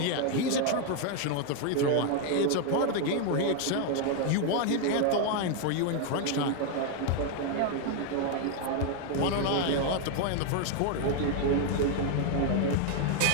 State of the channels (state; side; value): different; both; correlation 0.00